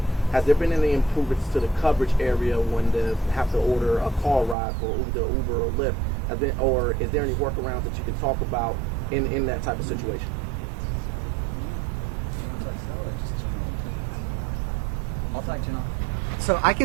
has there been any improvements to the coverage area when they have to order a car ride for either Uber or Lyft? Or is there any workarounds that you can talk about in that type of situation? So I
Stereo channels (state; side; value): drops out; left; at 4.5 s